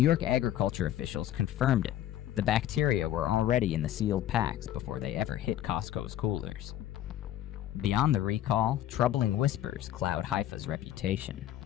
York agriculture officials confirmed it. The bacteria were already in the sealed packs before they ever hit Costco's coolers. Beyond the recall, troubling whispers cloud Haifa's reputation.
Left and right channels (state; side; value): quieter; right; 12.4 dB